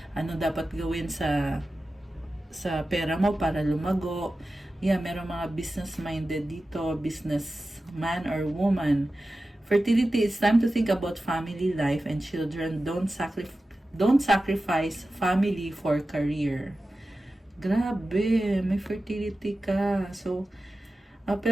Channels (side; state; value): both; normal; correlation 0.94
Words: ano dapat gawin sa pera mo para lumago. Yeah, meron mga business-minded dito, businessman or woman. Fertility, it's time to think about family life and children. Don't sacrifice family for career. Grabe, may fertility ka. So,